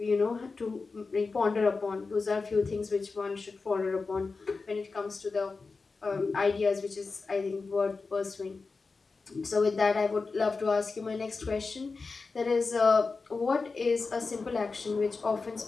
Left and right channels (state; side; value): quieter; right; 4.2 dB